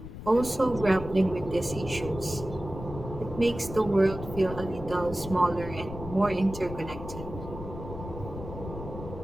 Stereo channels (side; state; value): left; noise; rumble, 10 dB below the sound